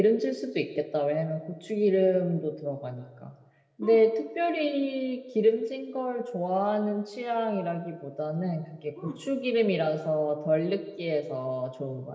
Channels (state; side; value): identical; both; correlation 1.00